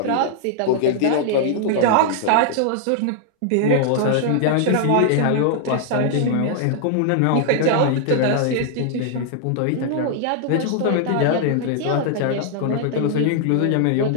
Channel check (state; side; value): different; both; correlation -0.01